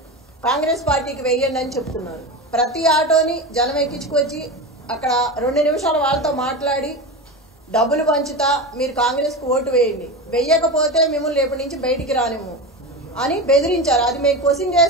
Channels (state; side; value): normal; both; correlation 0.23